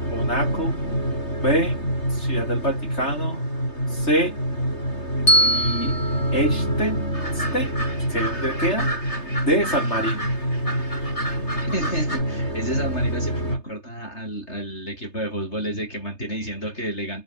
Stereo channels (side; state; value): right; late; 3.3 ms